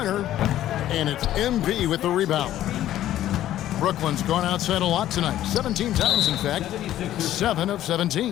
And it's MP with the rebound. Brooklyn's gone outside a lot tonight. 17 times, in fact. 7 of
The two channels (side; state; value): right; quieter; 12.8 dB